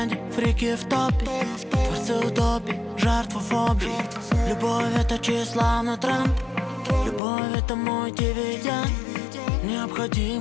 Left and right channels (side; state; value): right; drops out; at 7.2 s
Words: фрики в топе. Творцы утопии, жертва фобии. Любовь — это тщеславный тренд. Любовь — это мой дивиденд.